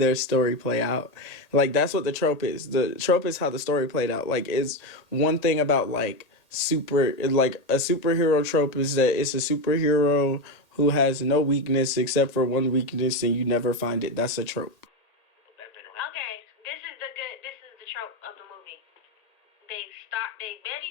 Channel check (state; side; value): late; right; 1.8 ms